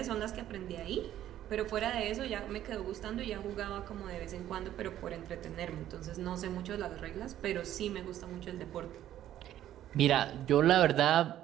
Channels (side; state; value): left; quieter; 12.1 dB